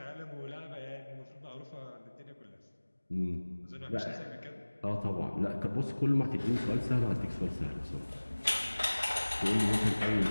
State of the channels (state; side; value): inverted; both; correlation -1.00